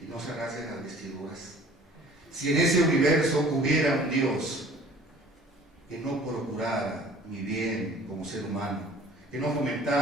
y no se rasguen las vestiduras. Si en ese universo hubiera un Dios que no procurara mi bien como ser humano, que no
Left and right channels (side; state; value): both; normal; correlation 0.50